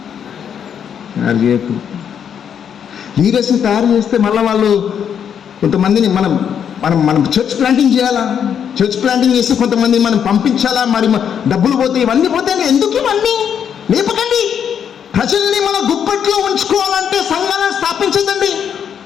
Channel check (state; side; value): quieter; right; 8.2 dB